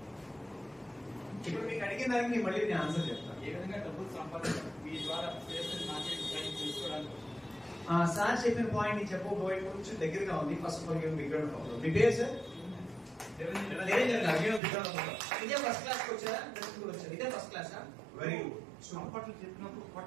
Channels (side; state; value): left; drops out; at 14.6 s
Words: ఇప్పుడు మీకు అడిగిన దానికి నేను మళ్ళీ నేను ఆన్సర్ చెప్తాను. ఏ విధంగా డబ్బులు సంపాదించాలి మీ ద్వారా మార్కెట్ తెలుసుకోవడానికి. సార్ చెప్పిన పాయింట్ నేను చెప్పబోయే కొంచెం దగ్గరగా ఉంది. ఫస్ట్ ఆఫ్ ఆల్ మీ పేరు సార్? ఇదే ఫస్ట్ క్లాస్ కి వచ్చారా? కూడా వచ్చారు. ఇదే ఫస్ట్ క్లాస్. Very good. సంపట్లు చెప్పినప్పుడు